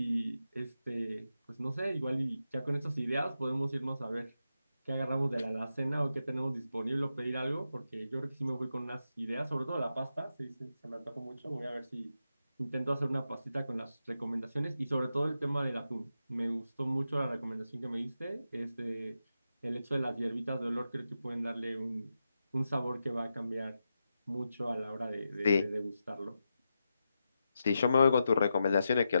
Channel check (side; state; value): both; inverted; correlation -0.88